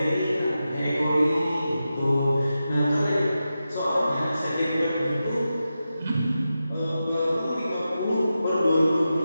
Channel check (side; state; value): both; inverted; correlation -0.91